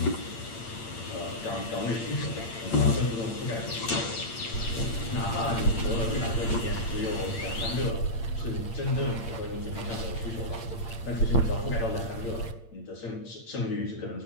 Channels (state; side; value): late; right; 8.8 ms